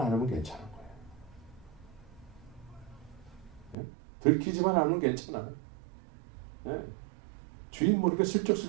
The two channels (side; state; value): left; drops out; at 3.8 s